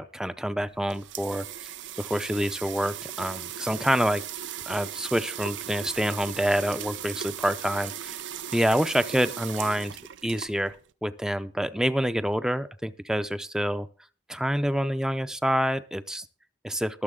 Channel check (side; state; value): both; normal; correlation 0.90